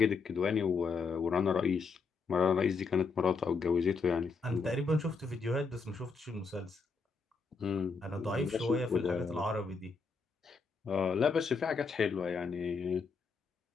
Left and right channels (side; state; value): right; quieter; 4.7 dB